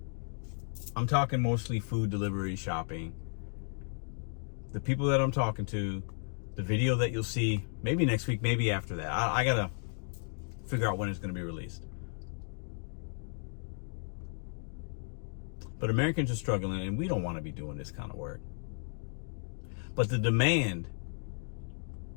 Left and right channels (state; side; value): silent; right; 55 dB below the other